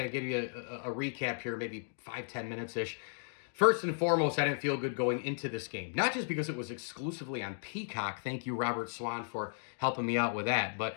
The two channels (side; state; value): right; silent; digital silence